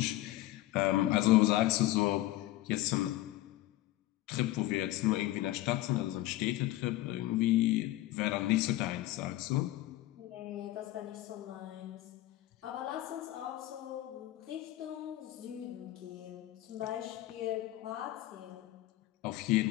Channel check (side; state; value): right; quieter; 15.9 dB